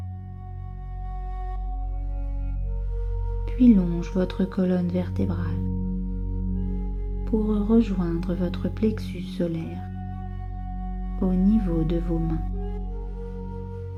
puis longe votre colonne vertébrale pour rejoindre votre plexus solaire au niveau de vos mains.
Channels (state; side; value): identical; both; correlation 1.00